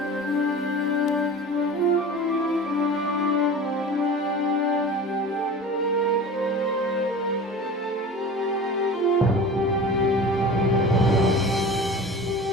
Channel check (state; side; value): normal; both; correlation 0.36